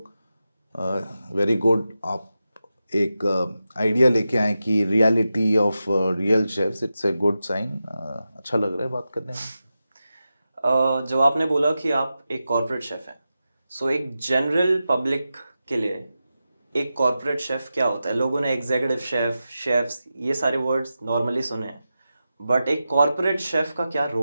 वेरी गुड, आप एक आइडिया लेके आए कि reality of real chefs, it's a good sign. अच्छा लग रहा है बात करने में। जब आपने बोला कि आप एक कॉर्पोरेट शेफ हैं, सो एक जनरल पब्लिक के लिए एक कॉर्पोरेट शेफ क्या होता है? लोगों ने एग्जीक्यूटिव शेफ, शेफ्स, ये सारे वर्ड्स नॉर्मली सुने हैं, बट एक कॉर्पोरेट शेफ का क्या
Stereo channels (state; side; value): inverted; both; correlation -0.91